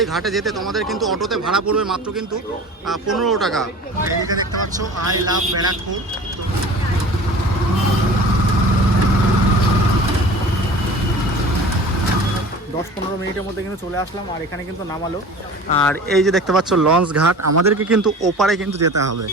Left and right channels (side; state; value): both; normal; correlation 0.40